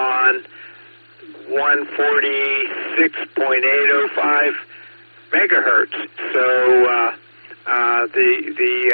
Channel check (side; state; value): both; inverted; correlation -1.00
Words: 146.805 megahertz. So